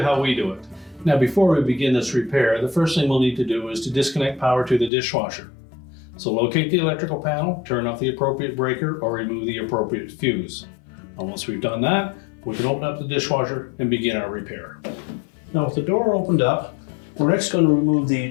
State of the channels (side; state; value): right; drops out; at 4.9 s